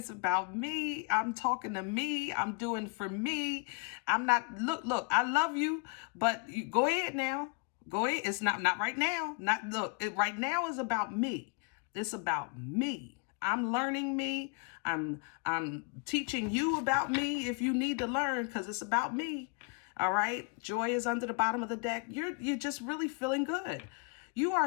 about me. I'm talking to me. I'm doing for me. I'm not, look, I love you, but you go ahead now. Go ahead. It's not right now. Right now is about me. It's about me. I'm learning me. I'm teaching you about me if you need to learn, because it's about me. All right. Joy is under the bottom of the deck. You're just really feeling good. You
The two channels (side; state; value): right; quieter; 35.2 dB